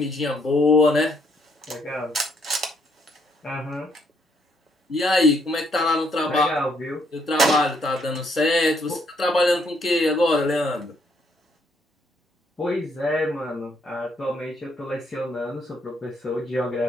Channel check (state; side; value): normal; both; correlation 0.71